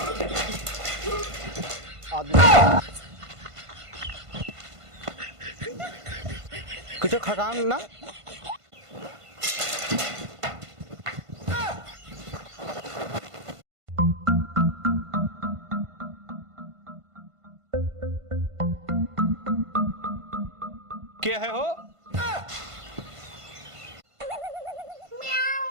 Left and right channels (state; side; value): late; left; 1.5 ms